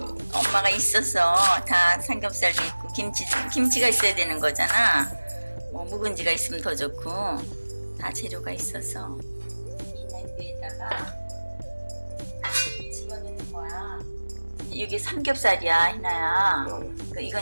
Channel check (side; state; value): both; inverted; correlation -1.00